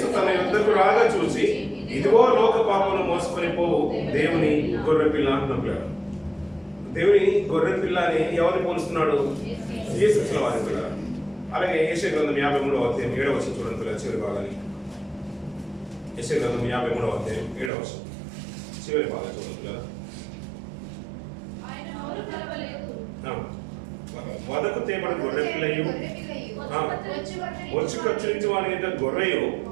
తన యుద్ధకు రాగా చూసి ఇదిగో లోక పాపను మోసుకొని పోవు దేవుని గొర్రెపిల్ల అంటున్నాడు. పిల్లలు దేవుని గొర్రెపిల్ల అని ఎవరిని పోలుస్తున్నాడు? యేసుక్రీస్తు వారి. పిల్లలు అలాగే యెషయా గ్రంథం 53వ అధ్యాయం 7వ వచనం చూడండి పిల్లలు, చివరి భాగాన్ని. యెషయా గ్రంథం 53వ అధ్యాయం 7వ వచనం చివరి భాగం చూడండి పిల్లలు. వదకు తేబడి గొర్రె పిల్లయు వచ్చి ఖర్చురించి వాని మీద గొర్రెయు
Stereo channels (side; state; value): left; drops out; at 17.7 s